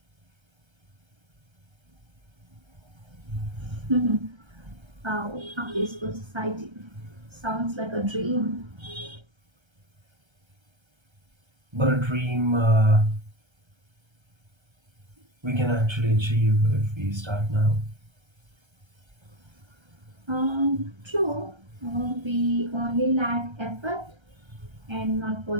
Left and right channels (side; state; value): left; late; 1.3 ms